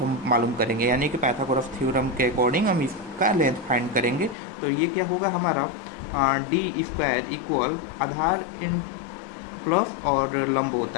हम मालूम करेंगे, यानी कि पाइथागोरस थ्योरम के अकॉर्डिंग हम इसका लेंथ फाइंड करेंगे। तो ये क्या होगा हमारा, D square equal Aadhaar in plus और लंब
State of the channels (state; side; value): drops out; right; at 4.4 s